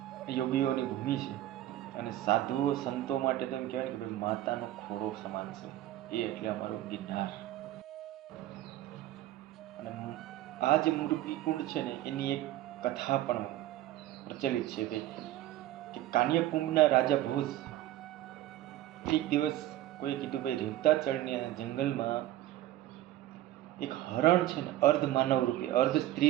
યોગીઓની ભૂમિ છે. અને સાધુઓ સંતો માટે તો એમ કહેવાય કે ભાઈ માતાનો ખોરો સમાન છે એ, એટલે અમારો ગિરનાર. અને આ જે મૃગીકુંડ છે ને એની એક કથા પણ પ્રચલિત છે કે કાન્યકુંભના રાજા ભોજ એક દિવસ કોઈ કીધું ભાઈ રેવતાચળની જંગલમાં એક હરણ છે ને અર્ધ માનવ રૂપે, અર્ધ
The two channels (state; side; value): quieter; left; 14.2 dB